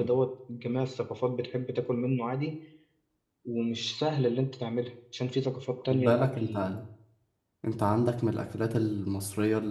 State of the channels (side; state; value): both; identical; correlation 1.00